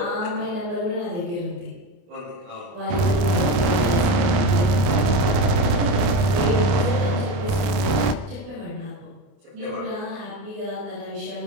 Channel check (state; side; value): late; left; 29 ms